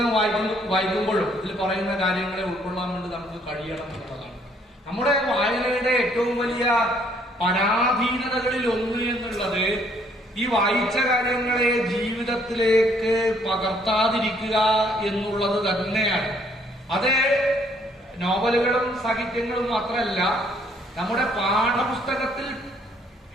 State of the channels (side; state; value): both; normal; correlation 0.65